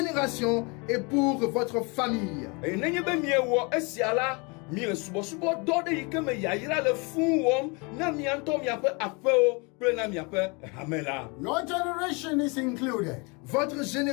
et pour votre famille. Eye nenye be miewɔ esia la, mie subɔsubɔ dɔ ɖe yi ke me yayra le fũu wɔm na mia ŋutɔ miaƒe aƒewo kple na miaƒe hame la. Your generation is included. Votre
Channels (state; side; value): quieter; right; 30.1 dB